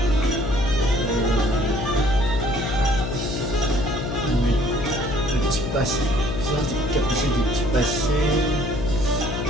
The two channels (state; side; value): noise; left; hum, 4 dB below the sound